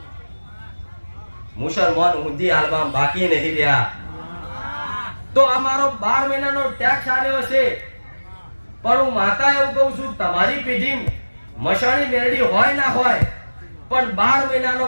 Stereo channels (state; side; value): inverted; both; correlation -1.00